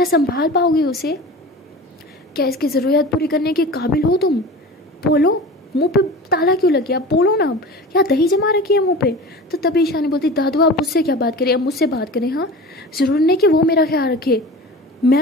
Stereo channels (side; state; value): both; normal; correlation 0.35